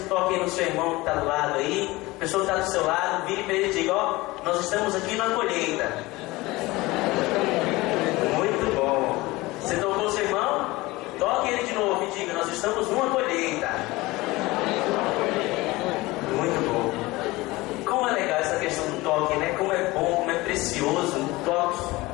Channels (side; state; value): right; quieter; 20.7 dB